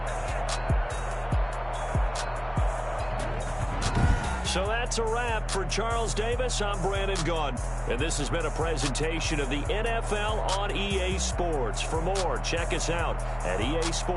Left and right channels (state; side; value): identical; both; correlation 1.00